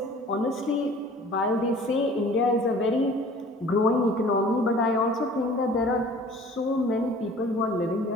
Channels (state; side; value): normal; both; correlation 0.48